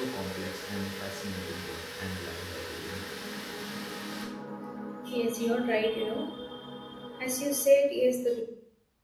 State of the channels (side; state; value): both; identical; correlation 1.00